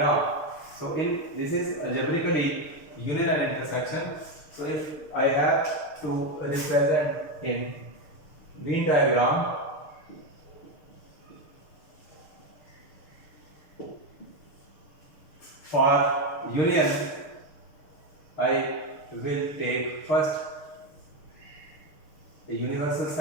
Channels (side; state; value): right; late; 6.6 ms